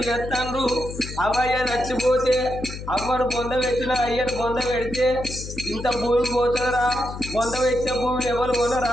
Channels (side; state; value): left; noise; hum, 10 dB below the sound